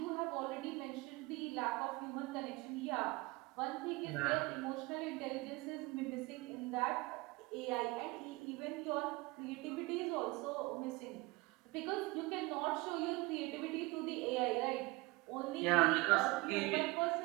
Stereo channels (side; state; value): left; quieter; 23.4 dB